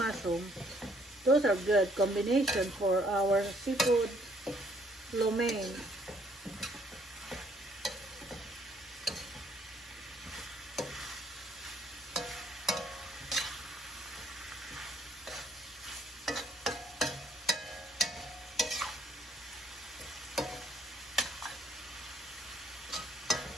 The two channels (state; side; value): normal; both; correlation 0.65